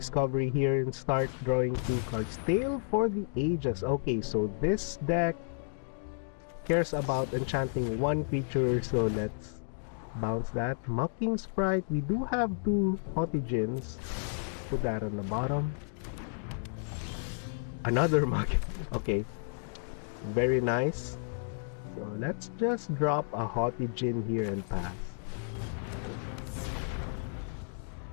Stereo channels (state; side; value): silent; right; digital silence